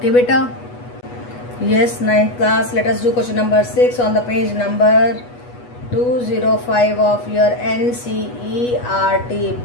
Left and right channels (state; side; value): late; right; 8.2 ms